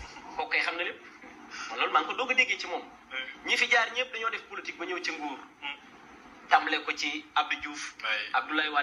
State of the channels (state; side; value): identical; both; correlation 1.00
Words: kooku kay xam na lépp man loolu maa ngi ko doog a déggee ci moom ñi fi jaar ñëpp dañoo def politique ba ñëw ci nguur tàmbale ko ci Abdou Diouf Abdoulaye